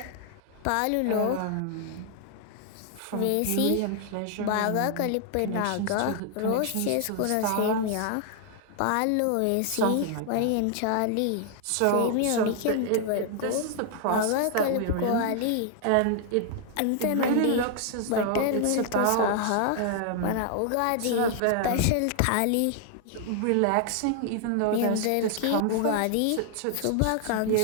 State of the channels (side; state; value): both; different; correlation 0.00